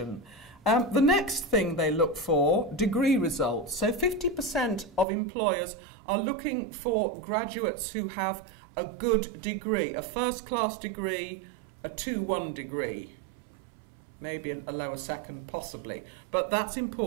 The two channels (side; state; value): left; drops out; at 5.1 s